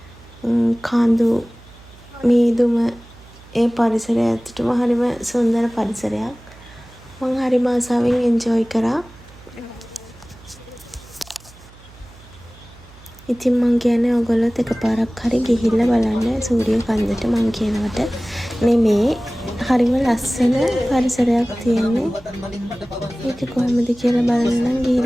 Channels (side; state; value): right; noise; hum, 23 dB below the sound